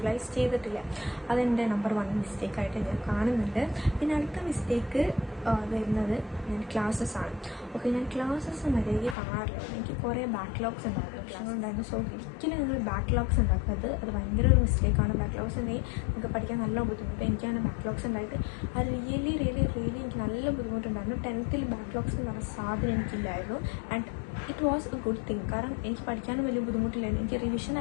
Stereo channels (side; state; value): right; drops out; at 9.2 s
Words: ചെയ്തിട്ടില്ല. അതെൻ്റെ നമ്പർ 1 മിസ്റ്റേക്കായിട്ട് ഞാൻ കാണുന്നുണ്ട്. പിന്നെ അടുത്ത മിസ്റ്റേക്ക് വരുന്നത് ഞാൻ ക്ലാസ്സസ് ആണ്. ഓക്കെ, ഞാൻ ക്ലാസ്സസ് മര്യാദയ്ക്ക് കാണാറില്ല. എനിക്ക് കുറേ ബാക്ക്ലോഗ്സ് ഉണ്ടായിരുന്നു. സോ ഒരിക്കലും നിങ്ങൾ ബാക്ക്ലോഗ്സ് ഉണ്ടാക്കുന്നത് അത് ഭയങ്കര ഒരു മിസ്റ്റേക്കാണ്. ബാക്ക്ലോഗ്സ് ഉണ്ടെങ്കിൽ നിങ്ങൾക്ക് പഠിക്കാൻ നല്ല ബുദ്ധിമുട്ട്. എനിക്കാണ് ബാക്ക്ലോഗ്സ് ഉണ്ടായിട്ട് അത് റിയലി എനിക്ക് നല്ല ബുദ്ധിമുട്ടുണ്ടായിരുന്നു. 10th ബാക്ക്ലോഗ്സ് എന്ന് പറഞ്ഞ സാധനം എനിക്കില്ലായിരുന്നു. And it was a good thing. കാരണം എനിക്ക് പഠിക്കാനും വലിയ ബുദ്ധിമുട്ടില്ലായിരുന്നു. എനിക്ക് റിവിഷൻ